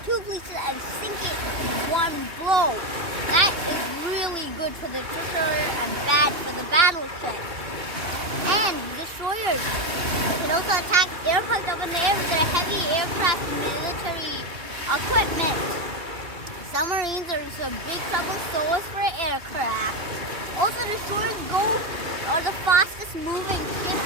two pieces and sink it in one blow. That is really good for the destroyer and bad for the battleship. And destroyers can also attack aircraft up in the air with their heavy aircraft military equipment. Submarines are in some big trouble, so is for aircraft. Also, destroyers are the fastest moving ship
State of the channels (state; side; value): late; left; 2.9 ms